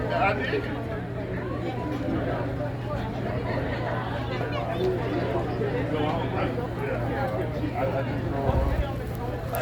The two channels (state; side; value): identical; both; correlation 1.00